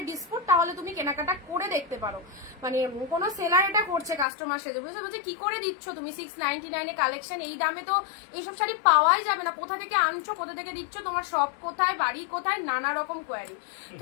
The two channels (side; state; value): right; drops out; at 4.2 s